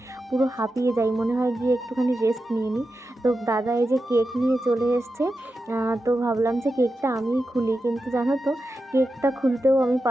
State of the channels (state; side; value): normal; both; correlation 0.90